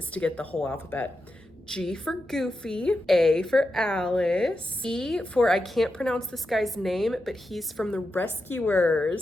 to get the whole alphabet. G for Goofy, A for Alice, E for, I can't pronounce this guy's name, but he's from the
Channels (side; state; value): both; normal; correlation 0.88